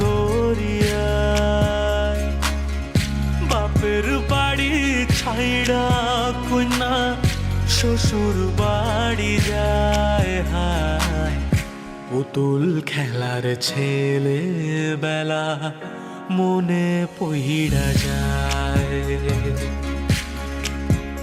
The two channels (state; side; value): identical; both; correlation 1.00